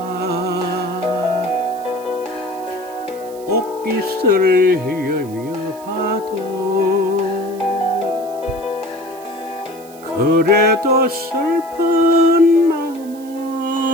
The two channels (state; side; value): noise; right; hiss, 22 dB below the sound